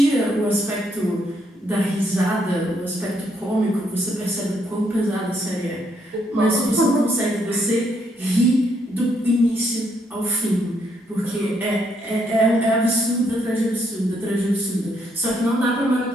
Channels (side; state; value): both; normal; correlation 0.74